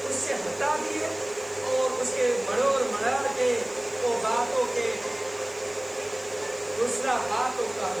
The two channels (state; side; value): noise; left; hiss, 26 dB below the sound